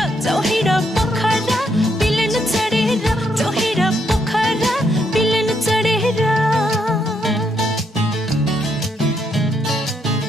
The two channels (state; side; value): normal; both; correlation 0.76